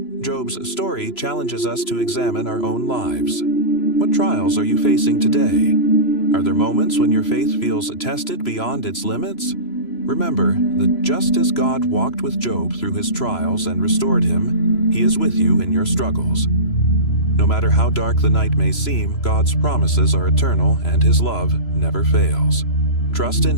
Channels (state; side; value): late; right; 3.0 ms